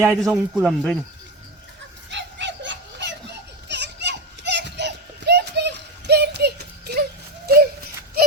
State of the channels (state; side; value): normal; both; correlation 0.16